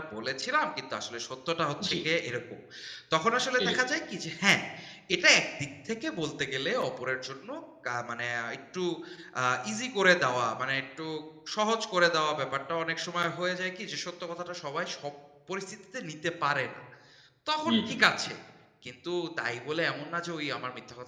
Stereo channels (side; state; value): both; identical; correlation 1.00